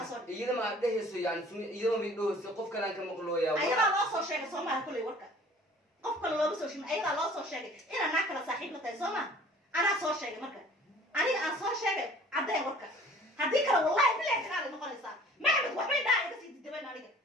إذا ما ده يسوي يعني إذا ما بدو قف كلام كم مقلويا أيضا لا صور شيء صوما كله وركان قف كله لا بسوي شيء أيضا لا صور شيء إنا ناكل صاحب متى صوما أنا صور شيء مركان أنا صور شيء عدا وركان هذيك والله بلا كلام نقول صار ما عمد وحبي ده بس يتدبن عليك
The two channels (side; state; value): both; normal; correlation 0.50